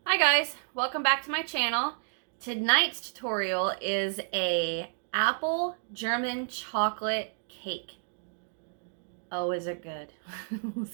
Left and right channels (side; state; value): left; silent; digital silence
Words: Hi guys, welcome back to my channel. Tonight's tutorial is a apple German chocolate cake. Oh, is it good?